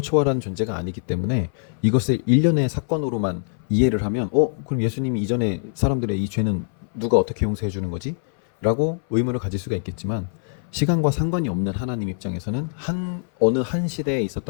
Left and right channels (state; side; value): silent; right; 58 dB below the other